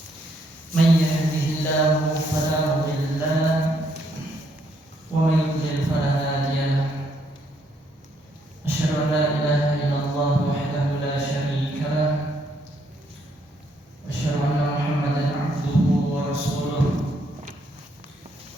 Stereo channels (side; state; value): both; normal; correlation 0.72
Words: من يهده الله فلا مضل له ومن يضلل فلا هادي له أشهد أن لا إله إلا الله وحده لا شريك له أشهد أن محمدا عبده ورسوله